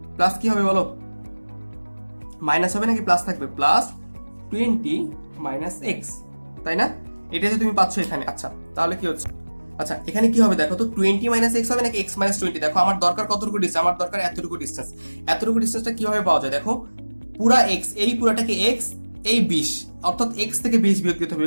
plus কি হবে বলো, মাইনাস হবে নাকি প্লাস থাকবে, প্লাস 20 মাইনাস এক্স, তাই না, এটা যে তুমি পাচ্ছ এখানে। আচ্ছা তাহলে কি হচ্ছে, আচ্ছা এখানে কি হবে দেখো তো, 20 মাইনাস এক্স হবে নাকি এক্স মাইনাস 20, দেখো আমার দরকার কতটুকু ডিস্টেন্স, আমার দরকার এতটুকু ডিস্টেন্স, এতটুকু ডিস্টেন্সটা কিভাবে পাওয়া যায়, দেখো পুরা এক্স, এই পুরাটাকে এক্স, এই 20, অর্থাৎ এক্স থেকে 20 বিয়োগ দিতে হবে,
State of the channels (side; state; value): both; inverted; correlation -1.00